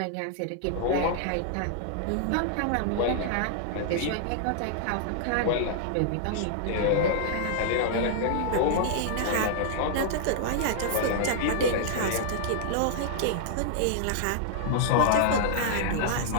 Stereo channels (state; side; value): different; both; correlation -0.01